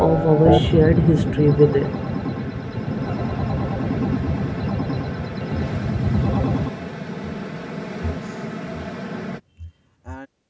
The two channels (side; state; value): both; identical; correlation 1.00